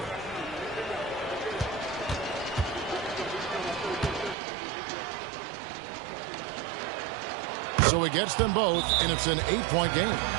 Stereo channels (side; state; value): left; drops out; at 4.4 s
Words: So he gets them both, and it's an 8-point game.